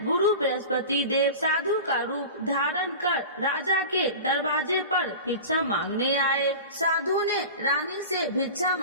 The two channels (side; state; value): both; inverted; correlation -0.33